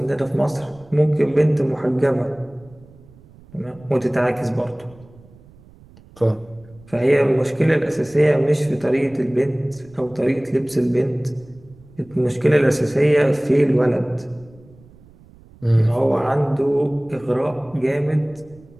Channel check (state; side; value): noise; right; rumble, 25 dB below the sound